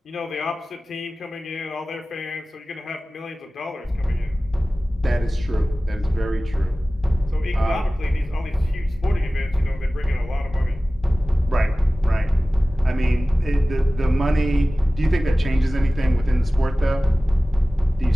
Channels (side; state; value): both; normal; correlation 0.97